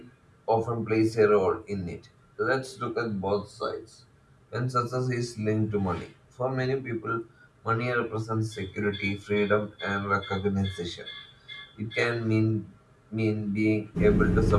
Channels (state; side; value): identical; both; correlation 1.00